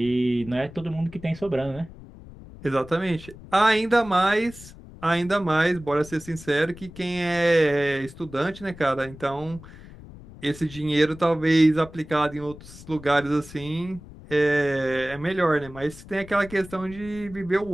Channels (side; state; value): left; noise; rumble, 18 dB below the sound